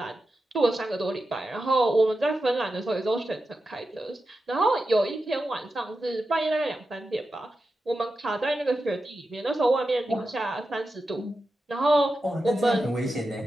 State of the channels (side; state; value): both; normal; correlation 0.90